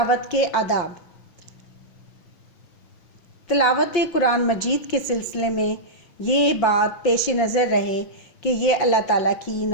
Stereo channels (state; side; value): late; right; 5.8 ms